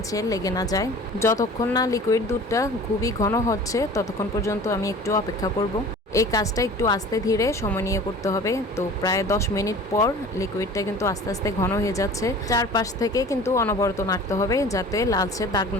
লেগে না যায়। যতক্ষণ না লিকুইড দুধটা খুবই ঘন হচ্ছে ততক্ষণ পর্যন্ত আমি একটু অপেক্ষা করব। এই কাজটা একটু আস্তে ধীরে সময় নিয়ে করতে হবে। তো প্রায় 10 মিনিট পর লিকুইডটা কিন্তু আস্তে আস্তে ঘন হয়ে যাচ্ছে। চারপাশ থেকে কিন্তু অনবরত নাড়তে হবে যাতে লালচে দাগ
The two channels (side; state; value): both; normal; correlation 0.43